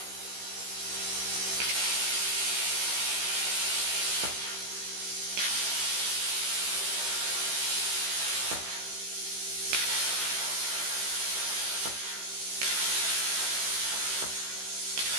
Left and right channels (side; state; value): left; late; 15 ms